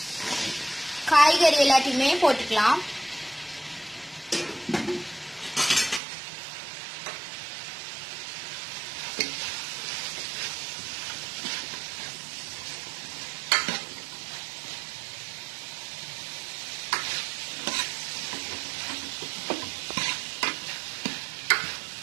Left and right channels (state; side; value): drops out; left; at 6.0 s